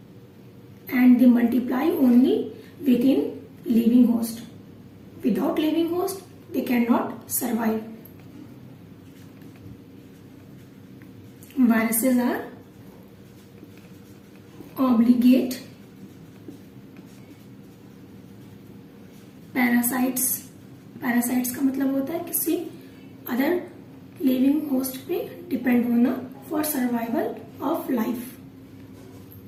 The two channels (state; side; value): identical; both; correlation 1.00